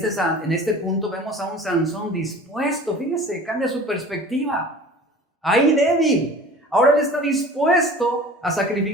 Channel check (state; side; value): normal; both; correlation 0.42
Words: este punto vemos a un Sansón dispuesto, fíjese, cambia su perspectiva. Ahí débil, ahora él está dispuesto a